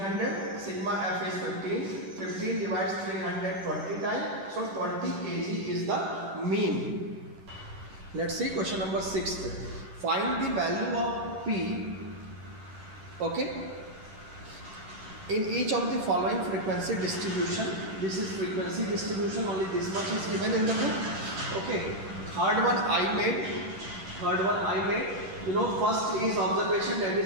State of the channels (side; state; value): left; late; 10 ms